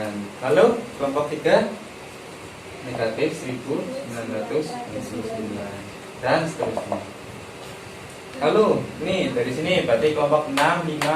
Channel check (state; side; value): identical; both; correlation 1.00